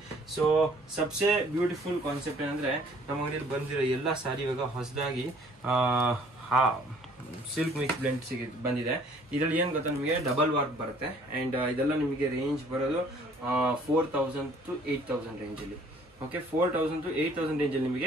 ಸೊ ಸಬ್ಸೆ ಬ್ಯೂಟಿಫುಲ್ ಕಾನ್ಸೆಪ್ಟ್ ಏನಂದ್ರೆ, ನಮ್ಮ ಅಂಗಡಿಯಲ್ಲಿ ಬಂದಿರೋ ಎಲ್ಲ ಸಾರಿ ಇವಾಗ ಹೊಸದಾಗಿ ಸಿಲ್ಕ್ ಮಿಕ್ಸ್ ಬ್ಲೆಂಡ್ ಬಂದಿದೆ. ಇದರಲ್ಲಿ ಏನ್ ಗೊತ್ತಾ, ನಿಮಗೆ ಡಬಲ್ ವರ್ಕ್ ಬರುತ್ತೆ. ಅಂಡ್ ಇದೆಲ್ಲ ನಿಮಗೆ ರೇಂಜ್ ಬರೋದು 4000 to 8000 ರೇಂಜ್ ಅಲ್ಲಿ. ಓಕೆ, 4000 to 8000 ರೇಂಜ್ ಅಲ್ಲಿ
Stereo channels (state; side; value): normal; both; correlation 0.57